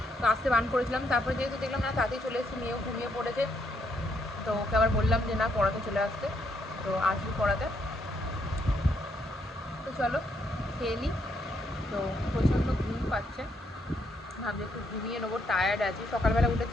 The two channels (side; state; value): both; normal; correlation 0.74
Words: তো আসতে বান করেছিলাম। তারপরে যেহেতু দেখলাম না তাতেই চলে এসেছি, মেয়েও ঘুমিয়ে পড়েছে, তো ওকে আবার বললাম যে না পড়াতে চলে আসতে, তো আসবি পড়াতে। তো চলো খেয়ে নিই। তো প্রচণ্ড ঘুম পাচ্ছে, ভাবছি একটু ঘুমিয়ে নেবো, টায়ার্ড আছি। সকালবেলা